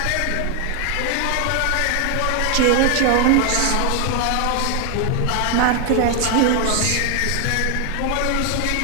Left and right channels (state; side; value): different; both; correlation 0.01